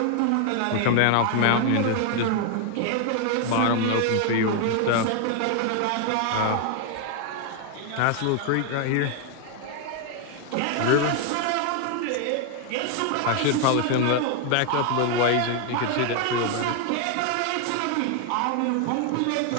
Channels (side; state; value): both; different; correlation 0.00